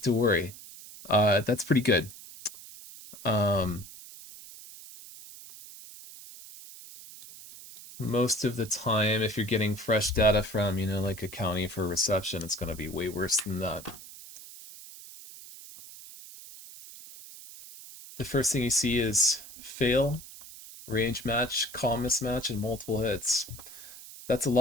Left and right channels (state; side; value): noise; right; hiss, 16 dB below the sound